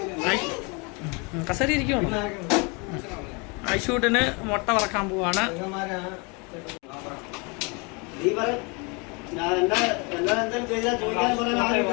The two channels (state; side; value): quieter; right; 30.7 dB